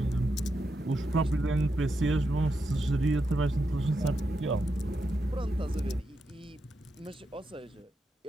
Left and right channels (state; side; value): normal; both; correlation 0.85